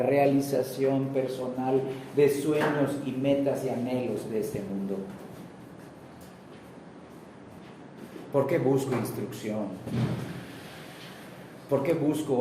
personal de sueños y metas y anhelos de este mundo. ¿Por qué busco instrucción? ¿Por qué busco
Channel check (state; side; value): identical; both; correlation 1.00